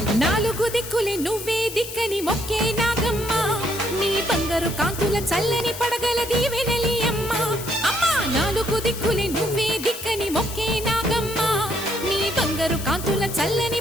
నాలుగు దిక్కులే నువ్వే దిక్కని మొక్కే నాగమ్మ నీ బంగారు కాంతుల చల్లని పడగల దీవెనలి అమ్మ అమ్మా నాలుగు దిక్కులే నువ్వే దిక్కని మొక్కే నాగమ్మ నీ బంగారు కాంతుల చల్లని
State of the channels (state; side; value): noise; left; hiss, 10 dB below the sound